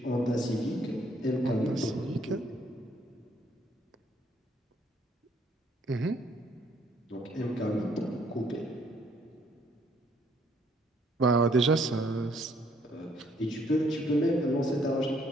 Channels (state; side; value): normal; both; correlation 0.66